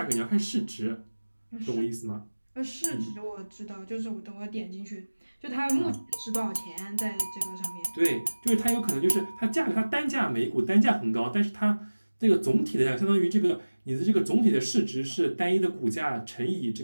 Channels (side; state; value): both; inverted; correlation -1.00